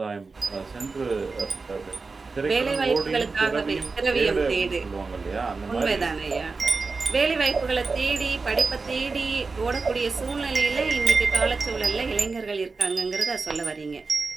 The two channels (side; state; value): left; quieter; 4.2 dB